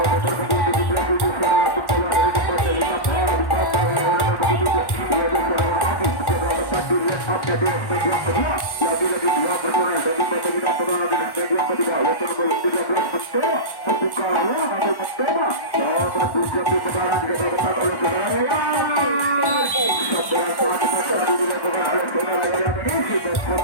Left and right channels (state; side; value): late; right; 1.1 ms